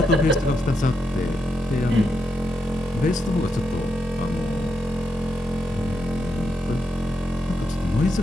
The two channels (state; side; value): normal; both; correlation 0.83